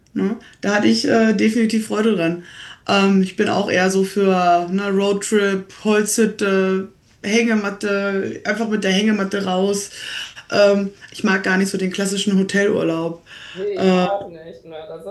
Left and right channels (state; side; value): identical; both; correlation 1.00